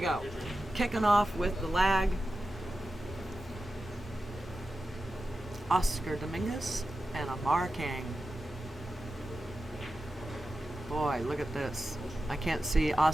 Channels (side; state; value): both; normal; correlation 0.92